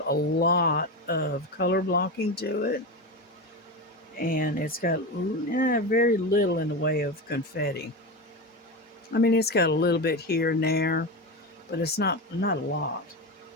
a lot of color blocking to it, and it's got very little in the way of confetti. I mean, it's got a little bit here and there, but it's not a lot,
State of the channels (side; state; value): both; normal; correlation 0.20